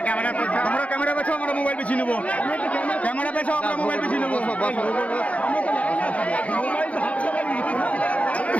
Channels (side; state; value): right; late; 0.066 ms